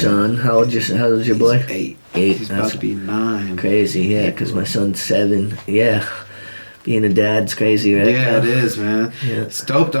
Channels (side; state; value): both; inverted; correlation -1.00